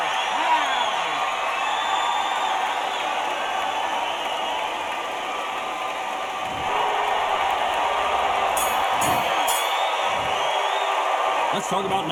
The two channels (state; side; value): identical; both; correlation 1.00